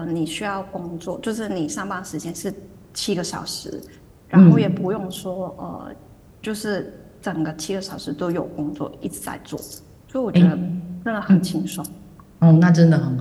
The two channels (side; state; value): both; identical; correlation 1.00